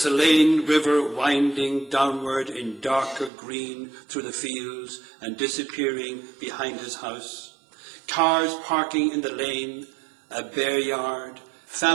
River winding downward in darker green through the fields and disappearing behind his house. Cars parking in the lane, a bare yard,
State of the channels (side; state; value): left; drops out; at 3.3 s